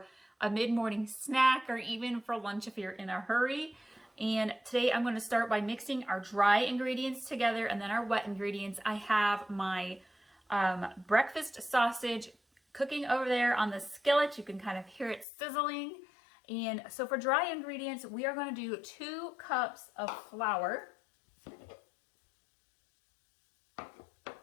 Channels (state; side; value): drops out; right; at 15.2 s